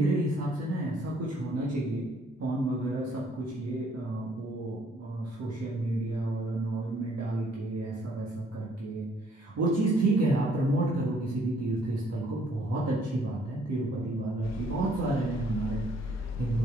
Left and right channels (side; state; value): both; normal; correlation 0.64